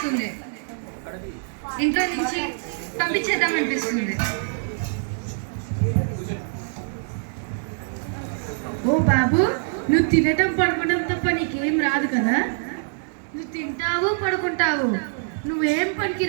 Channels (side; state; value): left; silent; digital silence